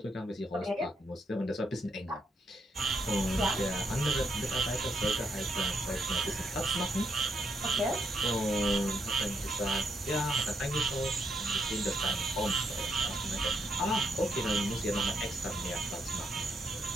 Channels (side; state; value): both; normal; correlation 0.77